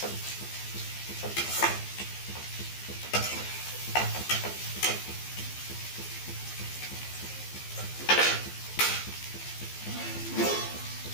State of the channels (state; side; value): late; right; 15 ms